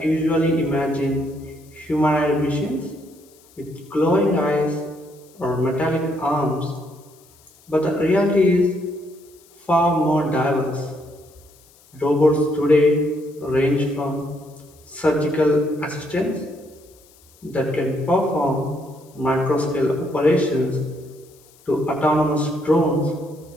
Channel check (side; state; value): left; noise; hiss, 28 dB below the sound